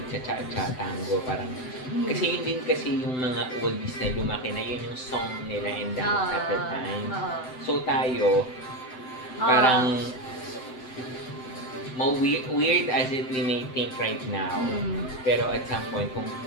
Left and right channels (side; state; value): right; late; 7.8 ms